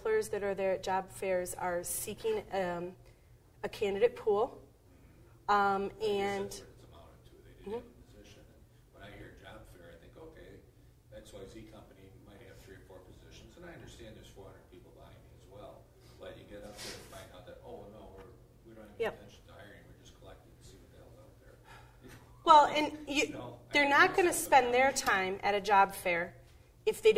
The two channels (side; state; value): both; identical; correlation 1.00